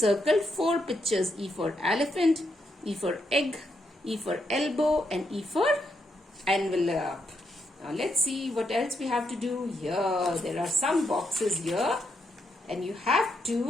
4 pictures. E for elephant, E for egg, E for elbow and E for envelope. Now let's see what else we have to do here. There are some boxes here and you have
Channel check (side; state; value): both; normal; correlation 0.79